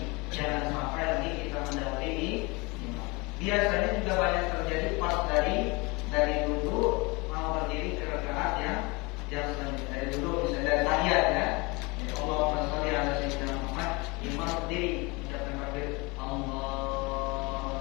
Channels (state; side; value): quieter; right; 26.5 dB